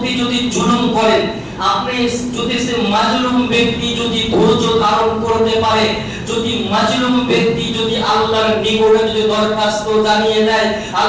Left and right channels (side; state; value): both; identical; correlation 1.00